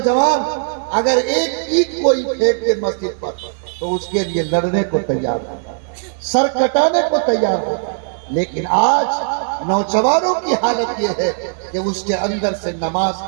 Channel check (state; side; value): silent; left; 66 dB below the other